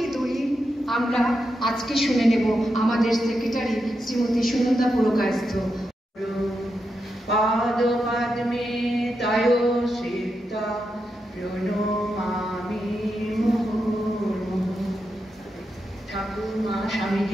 দলিল আমরা আজকে শুনে নেব আমাদের সেক্রেটারি শ্রীমতী সুনন্দা পুরকায়স্থ। পাদ পদ্মে তায় সিদ্ধা প্রণমামি মুহুর্মুহু। ঠাকুর মা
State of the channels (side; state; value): both; normal; correlation 0.86